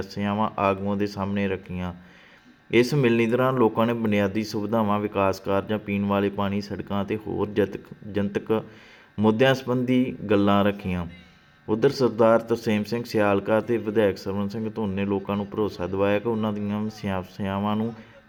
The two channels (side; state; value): both; identical; correlation 1.00